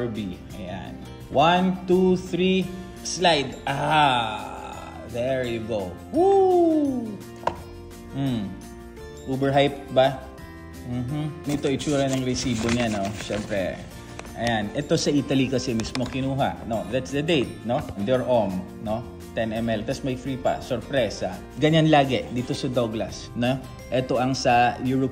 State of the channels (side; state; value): both; identical; correlation 1.00